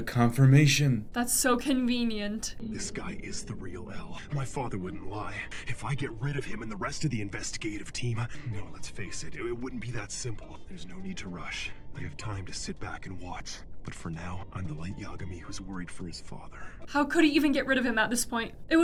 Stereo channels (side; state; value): both; identical; correlation 1.00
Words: confirmation. That's so convenient. This guy is the real L. My father wouldn't lie. If I get rid of him and the rest of the investigative team, no, let's face it, it wouldn't be that simple. There's no need to rush. I have time to sit back and watch. But for now, I'm the late Yagami who's worried for his father. How could he even get rid of him at this point? It